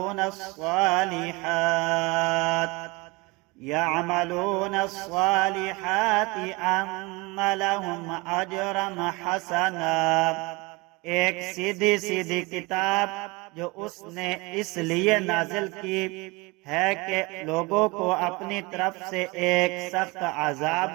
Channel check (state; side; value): quieter; left; 24.6 dB